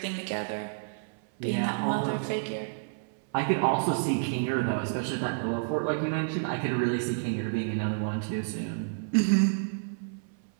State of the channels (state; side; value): silent; left; 57 dB below the other